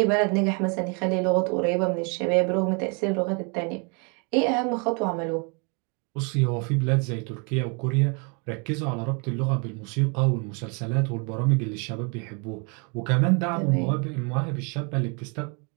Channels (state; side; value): quieter; left; 34.3 dB